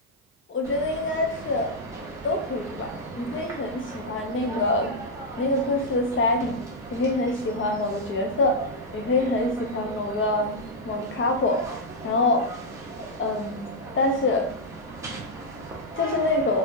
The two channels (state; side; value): normal; both; correlation -0.03